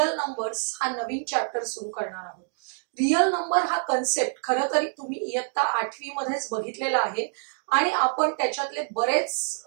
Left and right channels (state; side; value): silent; left; 61 dB below the other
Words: नंबर्स हा नवीन चॅप्टर सुरू करणार आहोत. रियल नंबर हा कन्सेप्ट खरं तरी तुम्ही इयत्ता 8वी मध्येच बघितलेला आहे आणि आपण त्याच्यातले बरेच